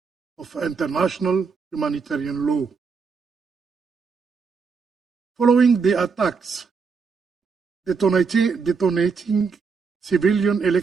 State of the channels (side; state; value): left; quieter; 5.3 dB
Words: of international humanitarian law. Following the attacks detonating civilian